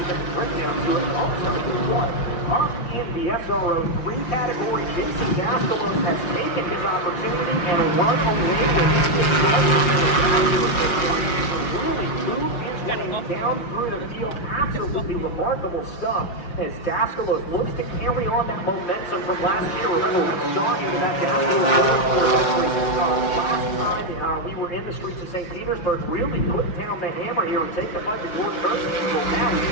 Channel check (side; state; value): right; late; 5.6 ms